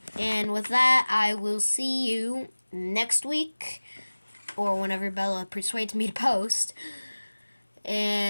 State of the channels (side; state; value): both; inverted; correlation -1.00